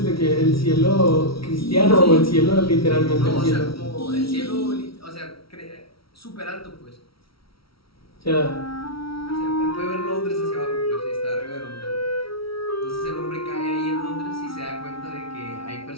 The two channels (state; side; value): late; right; 0.75 ms